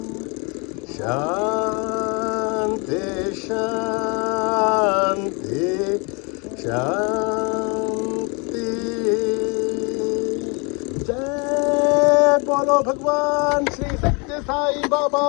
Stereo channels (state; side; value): quieter; right; 31.7 dB